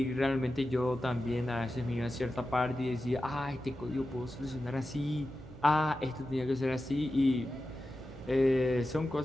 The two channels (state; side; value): normal; both; correlation 0.92